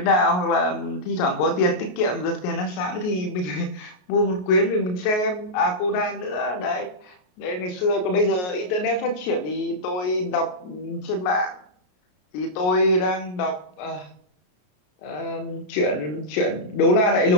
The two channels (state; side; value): late; right; 33 ms